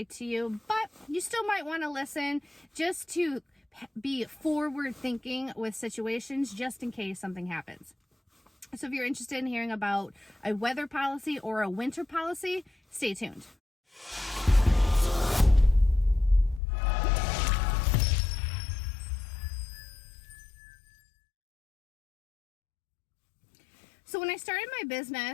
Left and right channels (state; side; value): drops out; right; at 16.6 s